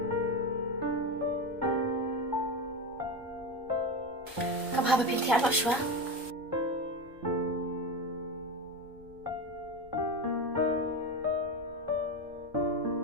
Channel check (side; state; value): left; noise; rumble, 24 dB below the sound